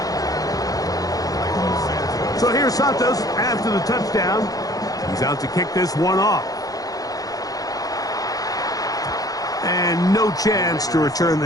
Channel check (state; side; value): late; right; 0.18 ms